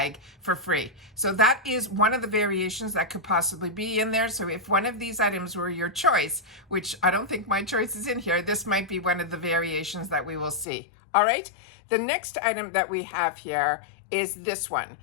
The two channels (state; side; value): drops out; right; at 10.7 s